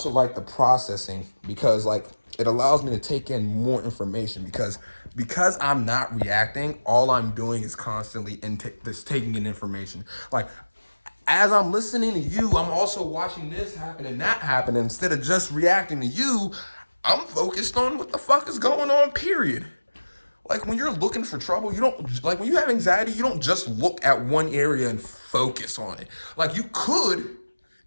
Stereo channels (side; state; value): both; inverted; correlation -1.00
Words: like the processing because like it allows me to take in more information because I'm not reacting, all I'm doing is constantly just taking in information. Like, as I'm listening to you, I'm also watching this happen and that happen. Instead of just reacting to you, I'm focused on what the fuck is going on, period. Like, when you're looking for trouble, you don't, like, when you have anxiety, you don't just look at one area and focus on it. Like, you could